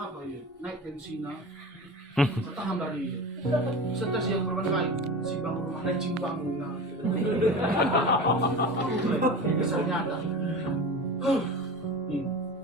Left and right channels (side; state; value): both; normal; correlation 0.31